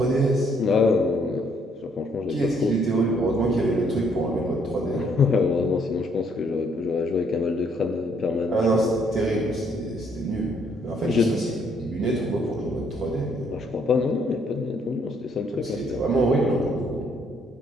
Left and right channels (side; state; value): both; normal; correlation 0.68